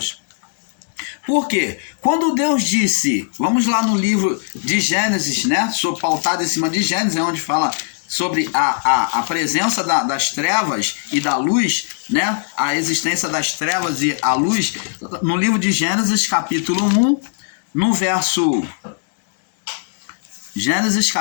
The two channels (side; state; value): right; silent; digital silence